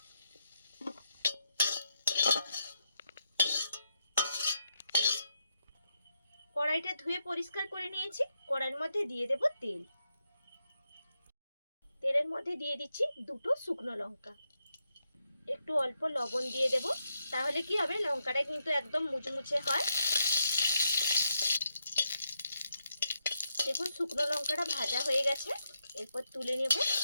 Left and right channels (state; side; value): inverted; both; correlation -0.82